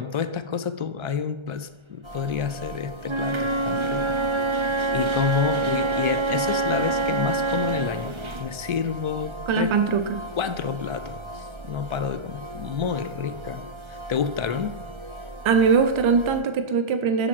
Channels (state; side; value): late; left; 1.3 ms